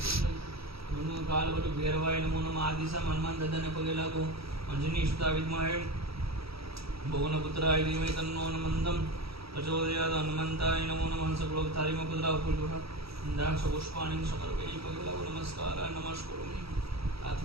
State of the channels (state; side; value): late; left; 0.76 ms